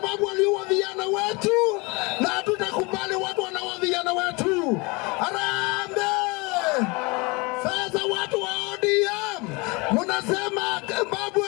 waliua vijana wetu na hatutakubali watu wanaua vijana wetu. Harambee! Sasa watu wa ODM mnasema babu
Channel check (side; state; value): right; quieter; 27.1 dB